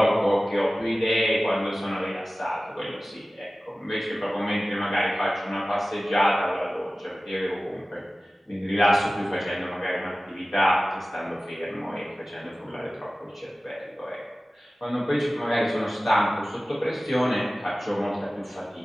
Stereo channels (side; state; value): both; normal; correlation 0.97